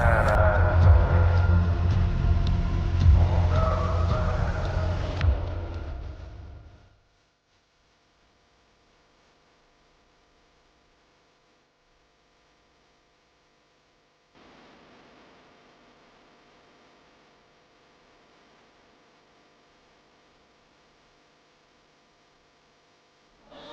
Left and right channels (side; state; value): both; identical; correlation 1.00